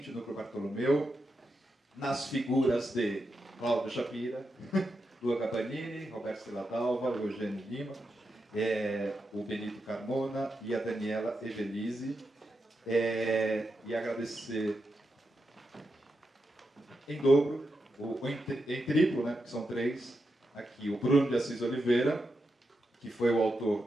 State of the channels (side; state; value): both; normal; correlation 0.86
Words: o Núcleo Bartolomeu, nas figuras de Cláudio Shapira, Lua Gabanini, Roberto Celadalva, Eugênio Lima, o Benito Carmona e a Daniela Evelise. E agradecer em dobro, em triplo, né, que são três, aqui o Bruno de Assis Oliveira, que foi o autor